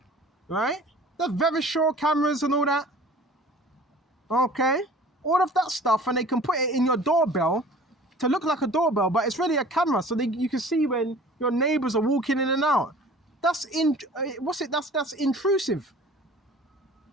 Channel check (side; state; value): both; normal; correlation 0.46